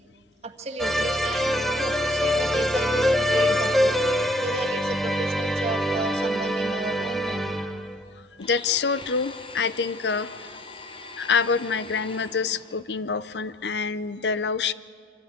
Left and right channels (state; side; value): normal; both; correlation 0.58